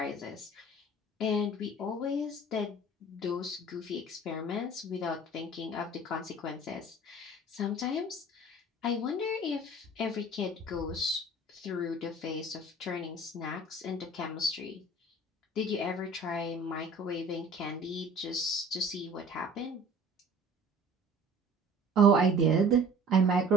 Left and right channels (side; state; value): both; normal; correlation 0.46